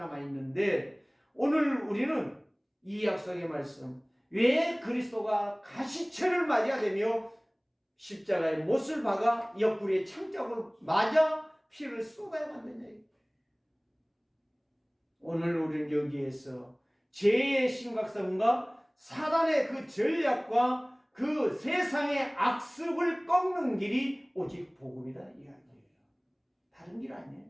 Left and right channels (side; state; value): both; identical; correlation 1.00